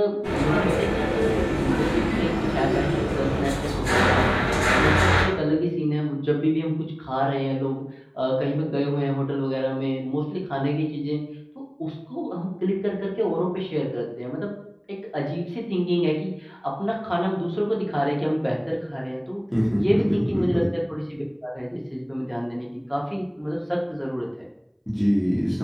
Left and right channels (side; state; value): both; identical; correlation 1.00